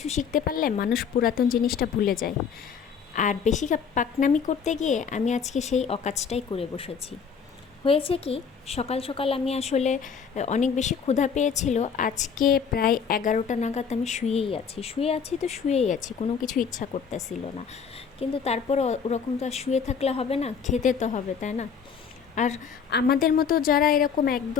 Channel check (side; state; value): right; quieter; 6.6 dB